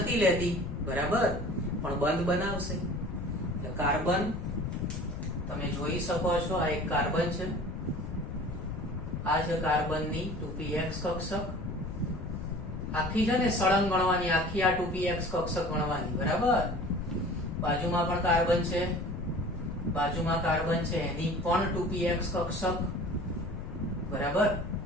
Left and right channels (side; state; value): left; noise; rumble, 8 dB below the sound